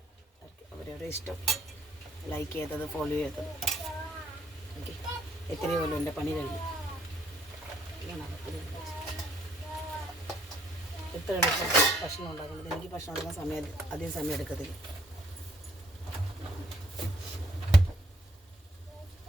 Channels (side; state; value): both; normal; correlation 0.67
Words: അവരവരുടെ ഇഷ്ടം, ലൈക്ക് ചെയ്തത്, ഫോളോ ചെയ്തത്. ഓക്കെ, എത്രയോ പോലും എൻ്റെ പണി കഴിഞ്ഞു. എത്ര എളുപ്പം ഭക്ഷണം ഉണ്ടാക്കുന്നത്. എനിക്ക് ഭക്ഷണം ഉണ്ടാക്കാൻ അധികം സമയം എടുക്കത്തില്ല.